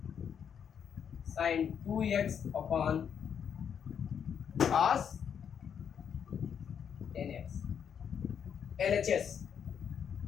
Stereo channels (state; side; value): quieter; right; 7.9 dB